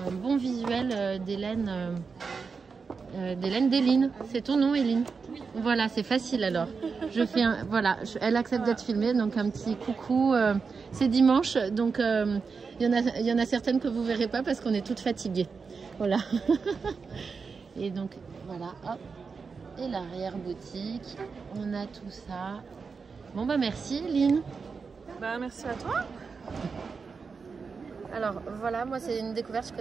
bon visuel des laines d'Eline. C'est ton nom, Eline? Voilà, c'est facile alors. Je fais voilà, elle accepte d'être filmée, donc un petit coucou. C'est dimanche, donc il y en a certaines que vous verrez pas parce qu'on est toutes fatiguées. Voilà. Et donc voilà, hop. Et l'arrière boutique, on a tout ça. Bon bah merci, Eline. Bah merci à toi. Alors voilà, moi c'est une découverte que je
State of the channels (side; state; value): left; quieter; 5.1 dB